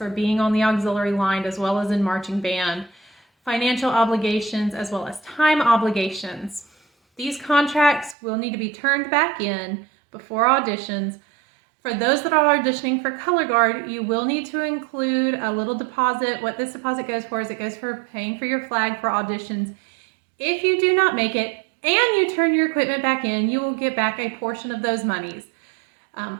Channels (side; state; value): left; drops out; at 8.2 s